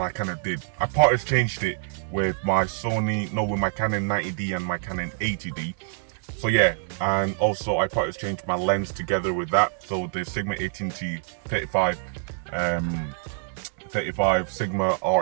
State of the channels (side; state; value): left; silent; 61 dB below the other